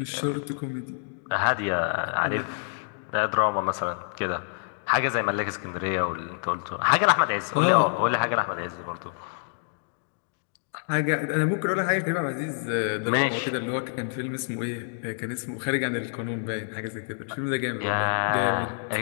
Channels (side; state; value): right; silent; digital silence